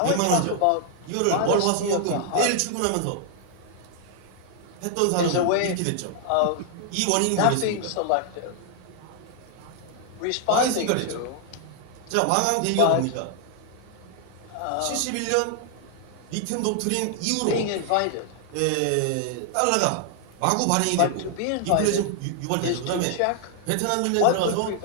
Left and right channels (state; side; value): different; both; correlation 0.00